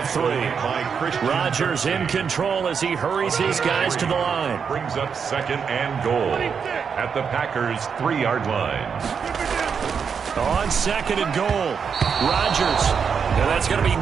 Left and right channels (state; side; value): quieter; left; 6.5 dB